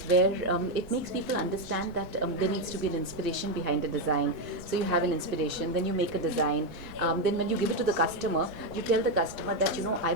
where it makes people understand that there needs to be an inspiration behind a design. So you have an inspiration, then you make a design, then when you give it to the customer, you tell the customer that, I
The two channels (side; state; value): both; normal; correlation 0.06